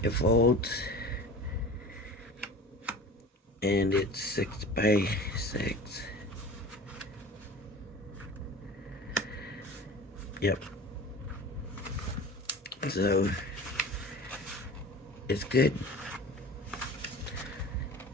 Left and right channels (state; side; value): normal; both; correlation 0.37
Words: it folds. And it's 6 by 6. Yep. So is good.